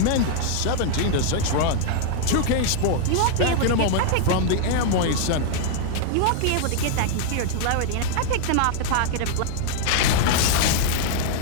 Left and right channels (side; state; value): both; different; correlation 0.00